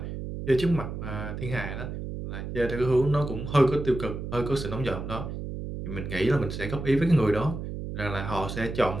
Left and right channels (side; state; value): right; noise; hum, 7 dB below the sound